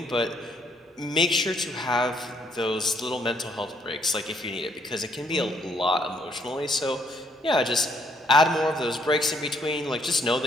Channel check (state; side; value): normal; both; correlation 0.68